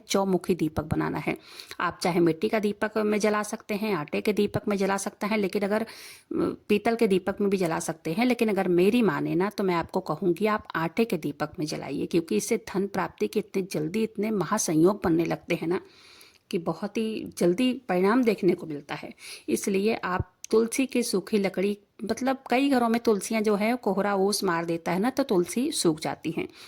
चौमुखी दीपक बनाना है। आप चाहे मिट्टी का दीपक में जला सकते हैं, आटे के दीपक में जला सकते हैं, लेकिन अगर पीतल के दीपक में भी जला सकते हैं, लेकिन अगर मेरी माने ना तो मैं आपको कहूंगी आप आटे के दीपक में जलाइए, क्योंकि इससे धन प्राप्ति के इतने जल्दी इतने महासंयोग बनने लगते हैं ना कि बहुत ही जल्दी परिणाम देखने को मिलता है। इसलिए आप तुलसी की सूखी लकड़ी, मतलब कई घरों में तुलसियां जो है कोहरा ओस मार देता है ना, तो तुलसी सूख जाती हैं।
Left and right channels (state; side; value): identical; both; correlation 1.00